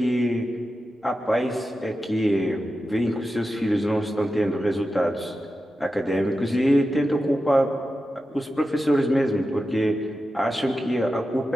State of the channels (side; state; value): both; normal; correlation 0.91